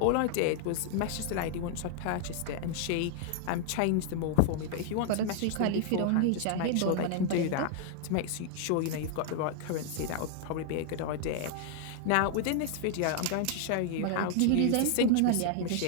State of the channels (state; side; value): different; both; correlation 0.00